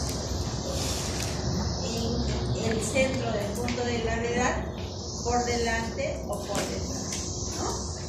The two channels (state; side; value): identical; both; correlation 1.00